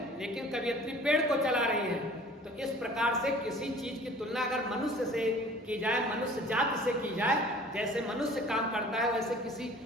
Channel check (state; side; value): normal; both; correlation 0.48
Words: लेकिन कवियत्री पेड़ को चला रही है। तो इस प्रकार से किसी चीज की तुलना अगर मनुष्य से की जाए, मनुष्य जाति से की जाए, जैसे मनुष्य काम करता है वैसे किसी